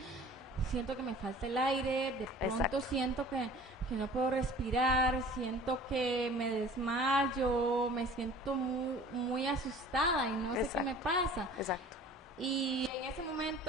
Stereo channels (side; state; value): both; normal; correlation 0.46